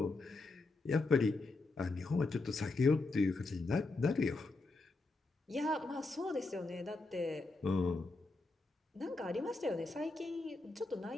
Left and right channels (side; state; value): right; quieter; 3.4 dB